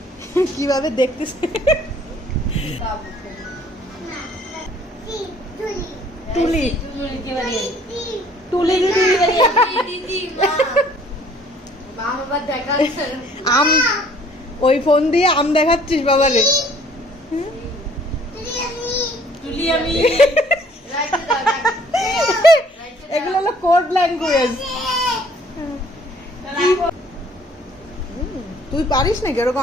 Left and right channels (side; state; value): both; normal; correlation 0.58